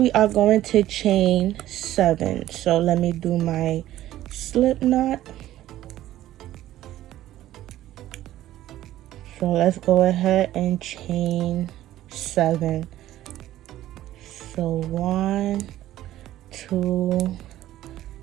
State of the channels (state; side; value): quieter; left; 13.9 dB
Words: are going to chain 7. So let me do my slip knot. So let's go ahead and chain 7. So 1, 2,